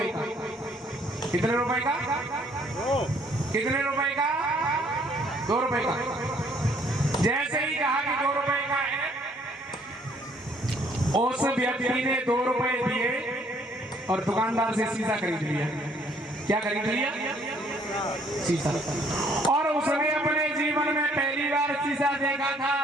का। कितने रुपए का? कितने रुपए का? 2 रुपए का। जैसे ही कहा कि 2 रुपए का है, उस व्यक्ति ने 2 रुपए दिए और दुकानदार से शीशा खरीद लिया। क्या खरीद लिया? शीशा। और उसने अपने जीवन में पहली बार शीशा देखा था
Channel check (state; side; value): normal; both; correlation 0.63